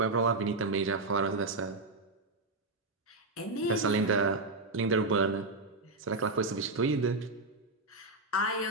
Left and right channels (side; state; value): left; quieter; 3.2 dB